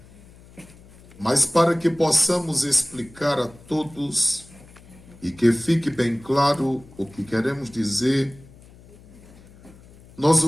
mas para que possamos explicar a todos e que fique bem claro o que queremos dizer, nós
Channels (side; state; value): left; noise; hum, 23 dB below the sound